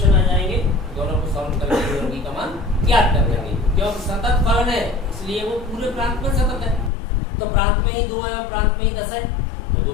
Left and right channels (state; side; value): drops out; right; at 6.9 s